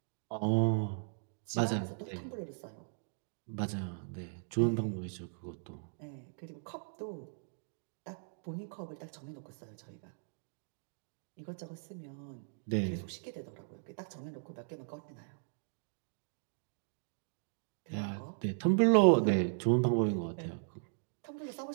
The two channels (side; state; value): left; silent; digital silence